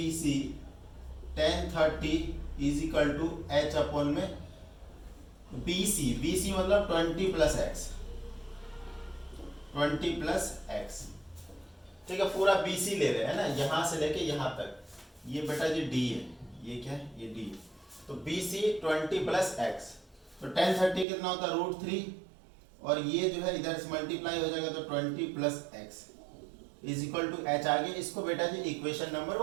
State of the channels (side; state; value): left; drops out; at 21.1 s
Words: tan 30 is equal to H upon में BC मतलब 20 प्लस एक्स, 20 प्लस एक्स। ठीक है, पूरा BC ले रहे हैं ना, यहां से लेके यहां तक। ये बेटा जी D है, ये क्या है? ये D। तो BC 20 प्लस एक्स, तो tan 30 कितना होता है √3, और ये जो है इधर से मल्टीप्लाई हो जाएगा तो 20 plus x is equal to H। आगे इसको बेटा जी इक्वेशन नंबर